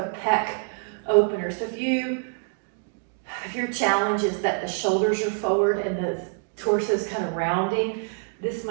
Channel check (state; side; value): silent; left; 60 dB below the other